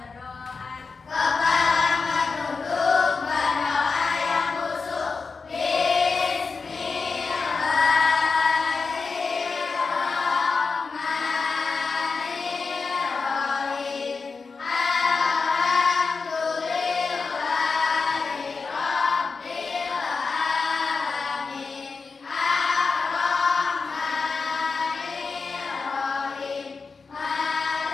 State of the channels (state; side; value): quieter; right; 4.7 dB